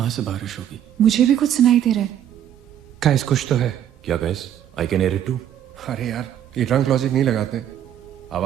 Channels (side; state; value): left; quieter; 10.5 dB